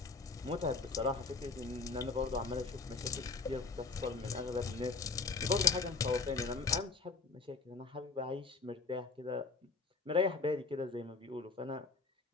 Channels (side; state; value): right; quieter; 4.1 dB